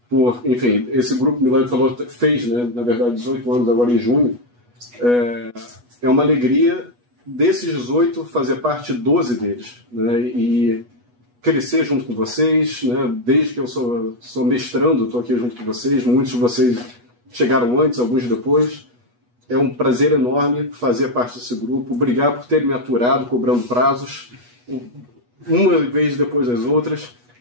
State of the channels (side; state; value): left; late; 8.2 ms